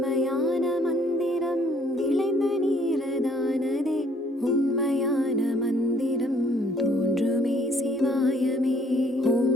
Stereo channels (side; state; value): both; normal; correlation 0.62